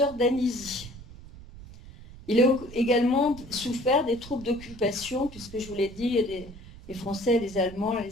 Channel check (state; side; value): noise; right; rumble, 17 dB below the sound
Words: d'Anizy. Il a également souffert des troupes d'occupation, puisque je vous l'ai dit, les Français, les Allemands,